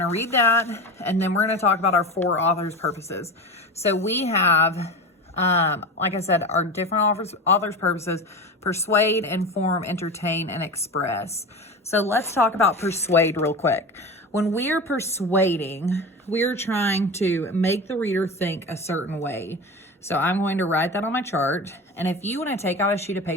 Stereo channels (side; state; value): both; normal; correlation 0.28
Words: to read that, and then we're going to talk about our four authors' purposes. So we have, like I said, our different authors' purposes: persuade, inform, entertain, and express. So let's talk about persuade real quick. When we are persuading, we're trying to make the reader think a certain way. So I'm going to write that on my chart. And if you want to take out a sheet of